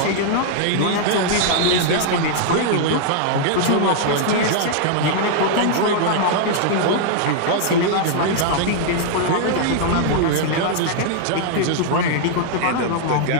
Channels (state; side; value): different; both; correlation -0.01